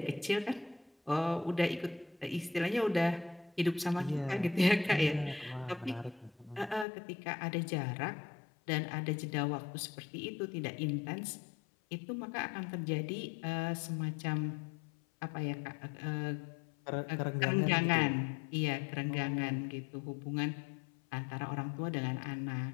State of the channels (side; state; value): right; drops out; at 6.9 s